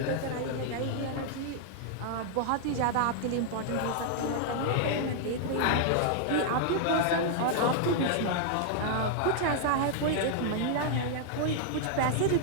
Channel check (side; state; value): both; different; correlation -0.01